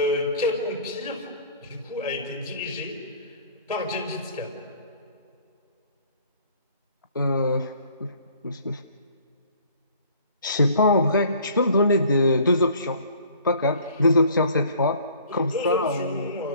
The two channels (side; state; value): both; inverted; correlation -0.53